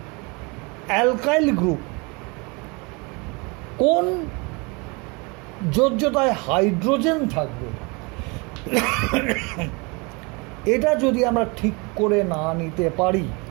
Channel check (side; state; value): left; quieter; 28.9 dB